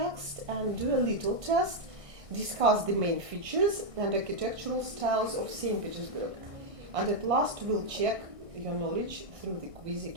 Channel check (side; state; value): left; late; 1.6 ms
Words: and do a little test, discuss the main features and architectural styles of St. Petersburg. And at last we'll check your knowledge through the quiz